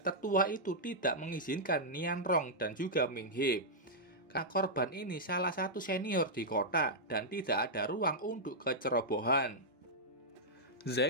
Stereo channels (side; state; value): both; normal; correlation -0.09